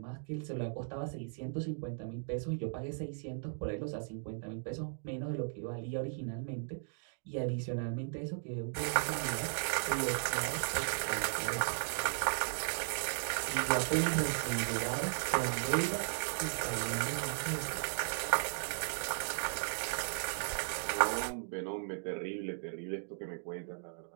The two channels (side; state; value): left; silent; digital silence